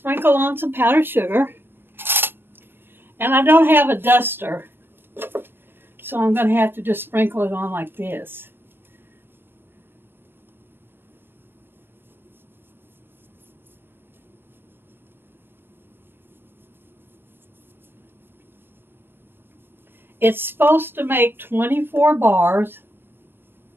on some powdered sugar. And I don't have a duster, so I'm going to have to just sprinkle it on like this. It's supposed to make 24 bars,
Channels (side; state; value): left; late; 0.10 ms